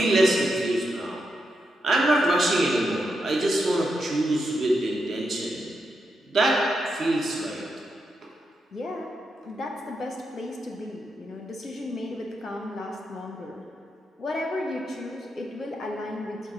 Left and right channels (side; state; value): both; normal; correlation 0.84